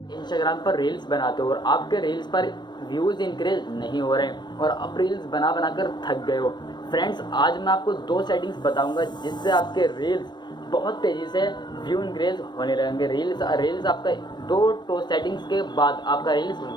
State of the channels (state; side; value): late; right; 0.21 ms